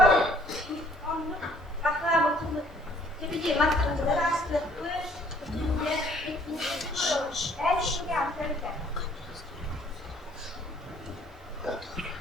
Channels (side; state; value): both; normal; correlation 0.60